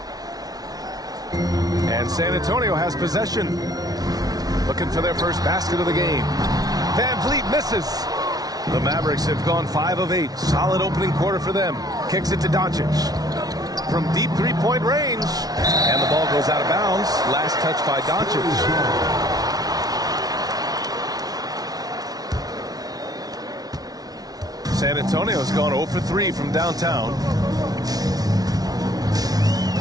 And San Antonio has possession. Looking for their first basket of the game. Van Vliet misses. The Mavericks have gone 5 of 8. Solid opening quarter for them. Kicks it to Doncic. From deep three-point range. And the ball goes out of bounds. Last touch by Doncic. San Antonio's gone 0 for 3 from downtown.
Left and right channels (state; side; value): late; left; 0.19 ms